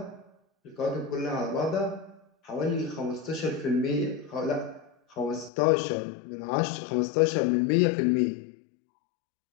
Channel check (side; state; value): right; drops out; at 5.5 s